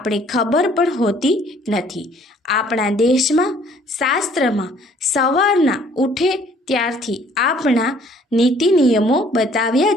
ખબર પણ હોતી નથી. આપણા દેશમાં, શાસ્ત્રમાં સવારના ઉઠે ત્યારથી આપણા નીતિ નિયમો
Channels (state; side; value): normal; both; correlation 0.59